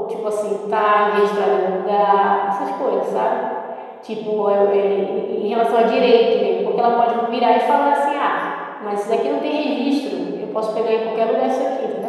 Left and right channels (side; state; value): both; identical; correlation 1.00